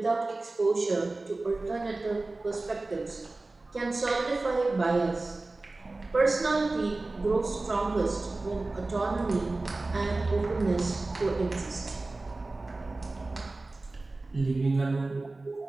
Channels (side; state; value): left; quieter; 3.2 dB